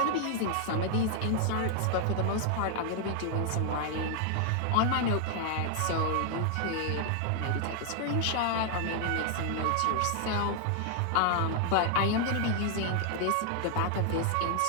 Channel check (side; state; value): both; different; correlation 0.00